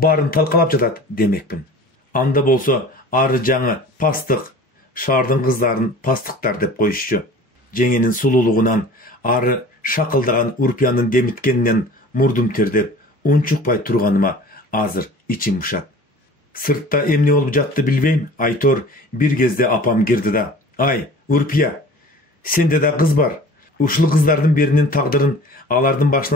талкалап жатат демекпин. Анда болсо ары жаңы пастык, шаардын кыздарын пастыктар деп коюшчу. Жеңенин сулуулугунан ары шакылдаган Урпиянын демиткенинен мурдум тердеп, унчукпай турганыма азыр ичим ушат. Сыртта эмне болуп жатты билбейм, айтор бир кезде апам кирди да: "Ай, Урпия, сенде да кыз бар. Ушул кыздардын биринин тагдырын алардын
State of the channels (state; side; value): normal; both; correlation 0.43